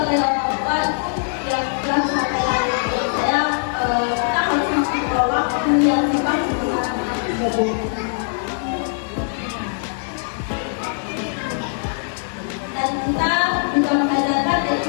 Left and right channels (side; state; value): right; silent; digital silence